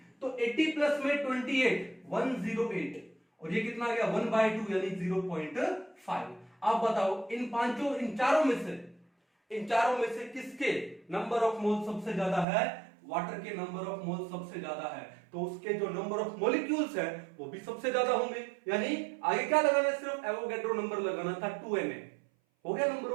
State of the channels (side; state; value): left; drops out; at 12.5 s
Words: तो 80 प्लस में 28, 108, और ये कितना आ गया? 1/2 यानी 0.5। आप बताओ इन चारों में से किसके नंबर ऑफ मोल सबसे ज्यादा है? वाटर के नंबर ऑफ मोल सबसे ज्यादा है, तो उसके जो नंबर ऑफ मॉलिक्यूल्स है वो भी सबसे ज्यादा होंगे। यानी आगे क्या लगाना है? सिर्फ एवोगैड्रो नंबर लगाना था, 2Na हो गया नंबर